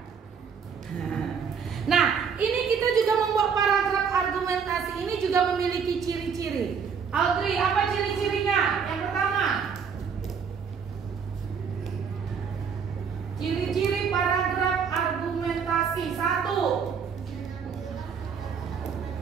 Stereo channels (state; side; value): quieter; left; 6.5 dB